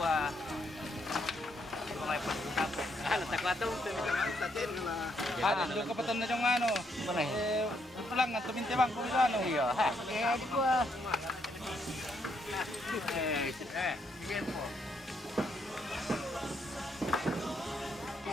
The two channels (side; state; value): both; normal; correlation 0.75